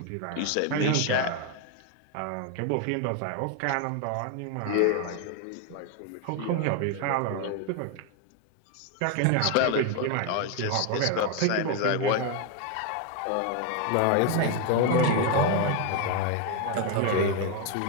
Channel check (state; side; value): different; both; correlation 0.01